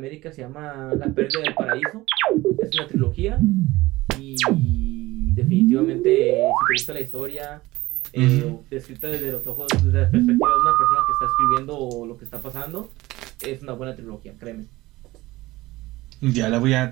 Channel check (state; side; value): quieter; left; 19.1 dB